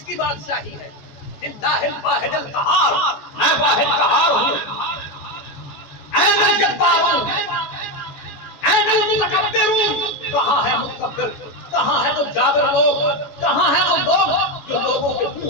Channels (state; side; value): late; right; 14 ms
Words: کی بادشاہی ہے؟ للہ الواحد القہار، میں واحد قہار ہوں۔ این الجبارون، این المتکبرون، کہاں ہے متکبر، کہاں ہے وہ جابر لوگ، کہاں ہے وہ لوگ جو لوگوں کے